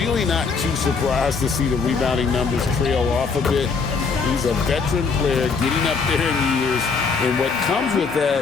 not too surprised to see the rebounding numbers trail off a bit. He's a veteran player getting up there in years, and what comes with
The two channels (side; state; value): right; quieter; 5.1 dB